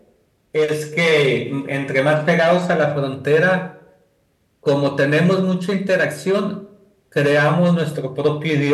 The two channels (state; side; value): identical; both; correlation 1.00